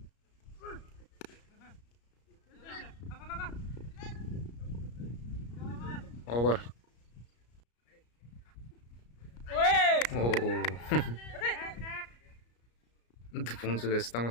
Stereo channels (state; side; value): late; right; 34 ms